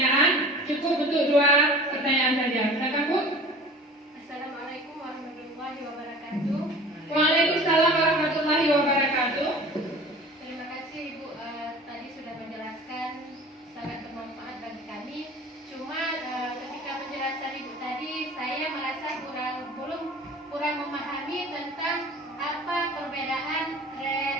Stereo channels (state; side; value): normal; both; correlation 0.42